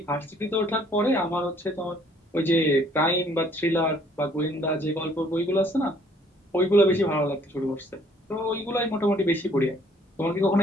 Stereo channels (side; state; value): both; normal; correlation 0.61